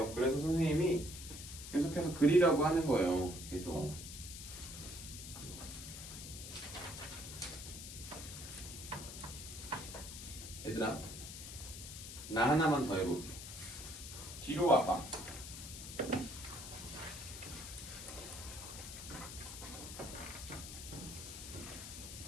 그래서 선생님이 계속해서 그리라고 하는 거예요. 계속. 얘들아, 나 하나만 더 해볼게. 뒤로 와봐.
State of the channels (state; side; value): noise; left; hiss, 10 dB below the sound